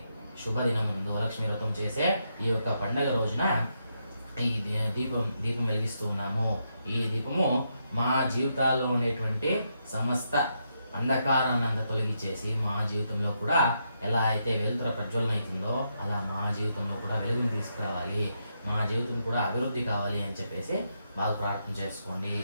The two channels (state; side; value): inverted; both; correlation -0.81